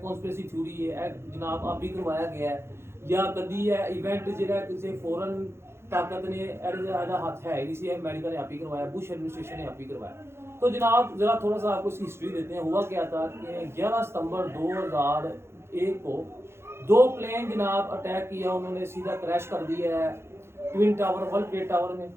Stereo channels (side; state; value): left; late; 0.12 ms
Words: कॉन्स्पिरेसी थ्योरी है जनाब, आप भी करवाया गया है या कभी है इवेंट ਜਿਹੜਾ ਕਿਸੇ ਫੋਰਨ ताकत ने ऐसा हाथ है नहीं सी, अमेरिका ने आप ही करवाया, बुश एडमिनिस्ट्रेशन ने आप ही करवाया। तो जनाब जरा थोड़ा सा आपको इसकी हिस्ट्री देते हैं। हुआ क्या था कि 11 सितंबर 2001 को 2 प्लेन जनाब अटैक किया, उन्होंने सीधा क्रैश कर दिया है twin tower, world trade tower में।